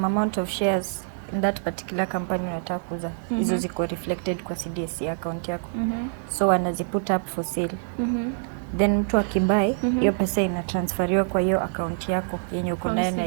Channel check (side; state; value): left; silent; digital silence